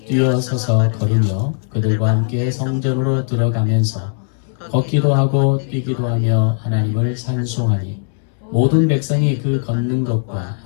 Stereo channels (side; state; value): right; silent; 67 dB below the other